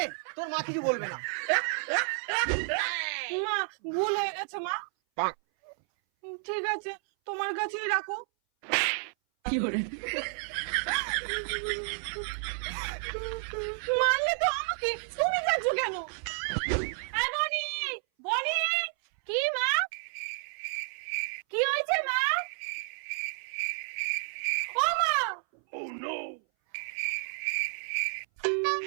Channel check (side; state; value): left; silent; 57 dB below the other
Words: তোর মা কিছু বলবে না। মা ভুল হয়ে গেছে মা। ঠিক আছে, তোমার কাছেই রাখো। মারলে তো আমাকে, তুমি যাচ্ছ কেন? এই বনি, বনি, কি মা? কি হয়েছে মা? ও মা!